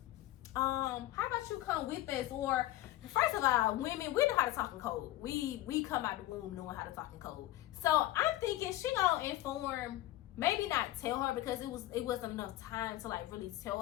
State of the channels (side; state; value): right; quieter; 15.8 dB